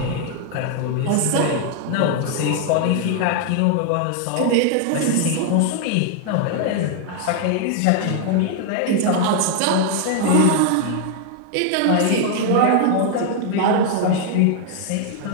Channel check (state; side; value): different; both; correlation 0.00